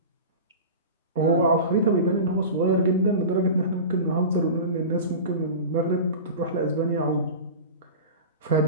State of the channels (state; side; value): inverted; both; correlation -0.31